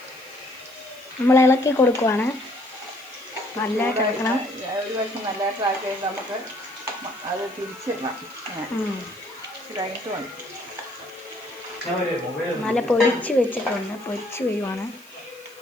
നമ്മൾ ഇളക്കി കൊടുക്കുവാണ്. നല്ലതായിട്ട് ഇളക്കണം. ഒരു വർഷം നല്ലതായിട്ട് ആക്കി കഴിഞ്ഞാൽ നമുക്ക് അത് തിരിച്ചിടണം. കഴിഞ്ഞിട്ട് മതി. നല്ല പൊരിച്ച് വെച്ചിട്ടുണ്ട്, പൊരിച്ച് വരുവാണ്.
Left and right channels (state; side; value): noise; left; hiss, 24 dB below the sound